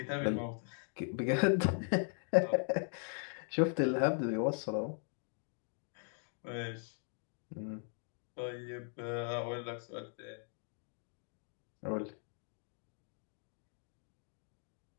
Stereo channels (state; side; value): silent; right; 52 dB below the other